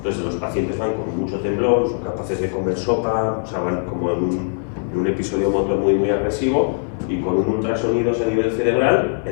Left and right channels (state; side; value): silent; right; 63 dB below the other